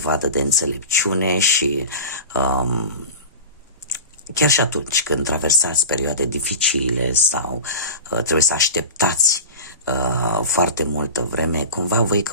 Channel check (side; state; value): both; inverted; correlation -0.30